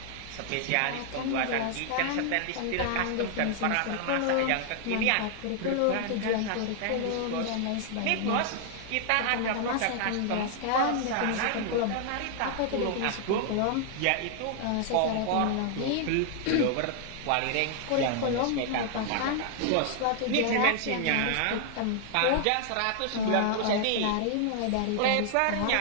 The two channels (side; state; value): both; different; correlation 0.00